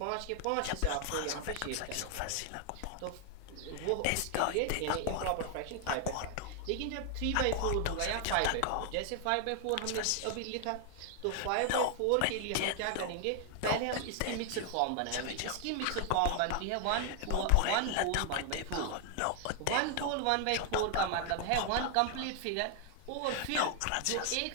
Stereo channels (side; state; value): both; different; correlation 0.00